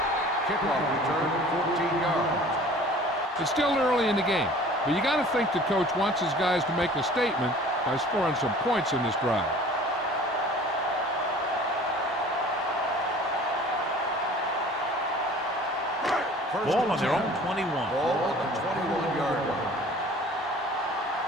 Kickoff return, 14 yards. It's still early in the game, but you got to think the coach wants his guys to make a statement by scoring some points in this drive. Ball on their own 21. Ball on the 21-yard line.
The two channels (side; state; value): both; normal; correlation 0.47